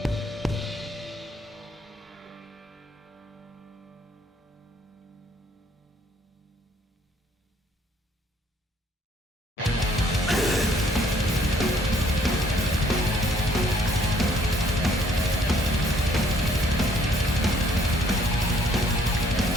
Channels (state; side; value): normal; both; correlation 0.63